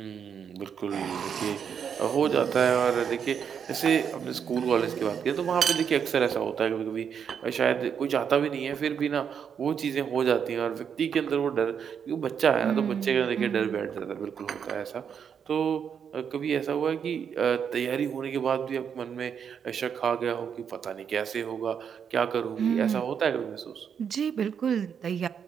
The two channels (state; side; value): quieter; left; 7.5 dB